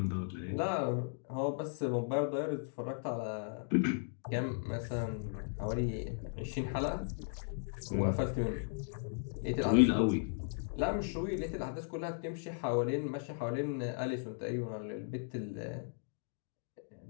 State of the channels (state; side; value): silent; right; digital silence